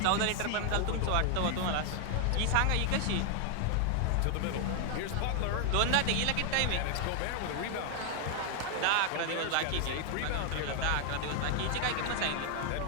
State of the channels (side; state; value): both; different; correlation 0.00